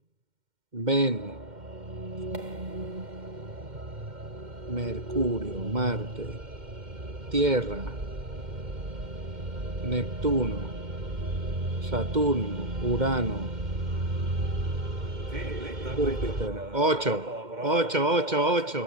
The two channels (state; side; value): late; left; 2.1 ms